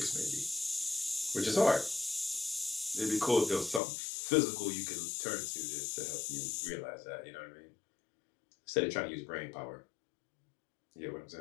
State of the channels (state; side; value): drops out; right; at 3.8 s